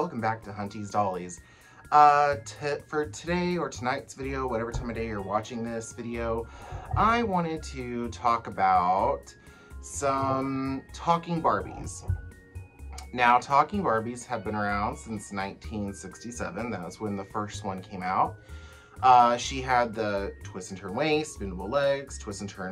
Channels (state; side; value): identical; both; correlation 1.00